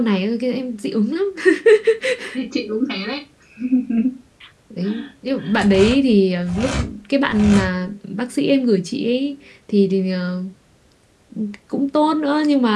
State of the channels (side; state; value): both; identical; correlation 1.00